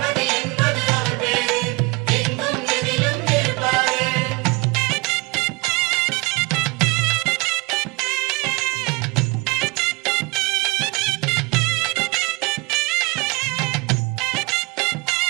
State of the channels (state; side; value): quieter; left; 26.0 dB